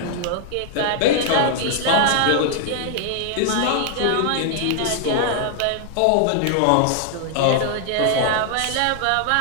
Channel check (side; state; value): both; different; correlation 0.00